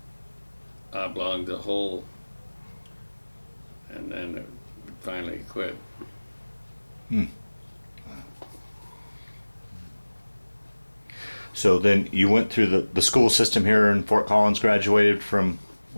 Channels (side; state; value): both; inverted; correlation -1.00